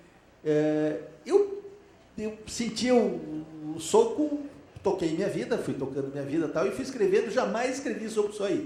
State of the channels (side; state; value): both; identical; correlation 1.00